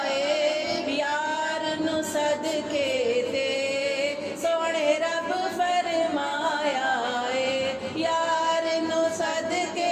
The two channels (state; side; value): identical; both; correlation 1.00